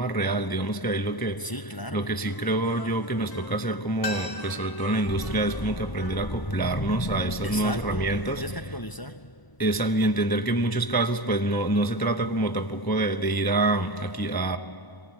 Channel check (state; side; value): late; right; 1.0 ms